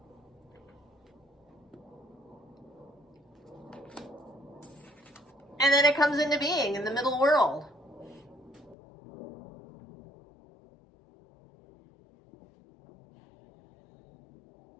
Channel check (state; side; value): drops out; right; at 8.8 s